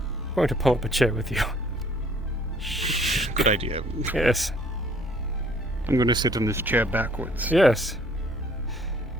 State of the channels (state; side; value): normal; both; correlation 0.59